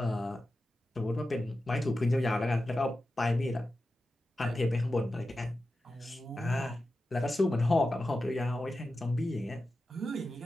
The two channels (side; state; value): both; normal; correlation 0.92